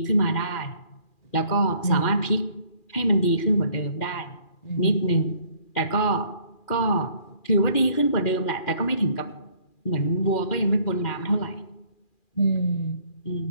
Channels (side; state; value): right; late; 2.4 ms